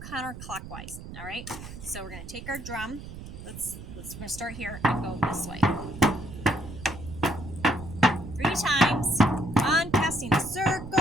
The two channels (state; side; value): noise; right; rumble, 12 dB below the sound